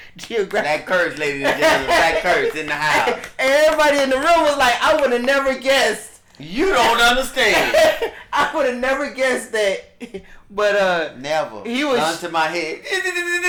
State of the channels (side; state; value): both; identical; correlation 1.00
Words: geographic. Black curse, ladies and gentlemen. Black curse in the house. And everybody in the room was like, "I would have never guessed." You don't understand. I would have never guessed that. But Never. He was gun to my head.